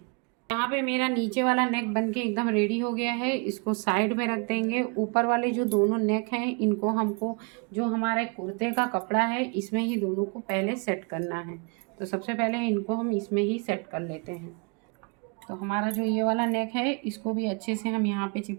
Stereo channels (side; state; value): left; quieter; 32.8 dB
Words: यहाँ पे मेरा नीचे वाला नेक बनके एकदम रेडी हो गया है। इसको साइड में रख देंगे। ऊपर वाले जो दोनों नेक हैं इनको हमको जो हमारे कुर्ते का कपड़ा है इसमें ही दोनों को पहले सेट करना है। तो सबसे पहले इनको हम इसमें ही सेट कर लेते हैं। तो हमारा जो ये वाला नेक है इसको भी अच्छे से हम यहाँ पे